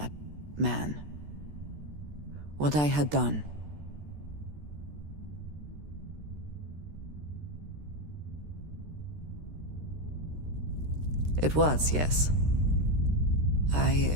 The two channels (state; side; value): late; left; 13 ms